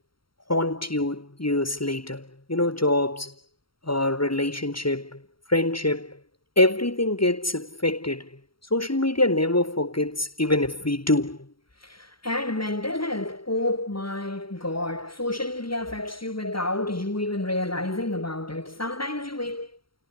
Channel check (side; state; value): right; late; 0.74 ms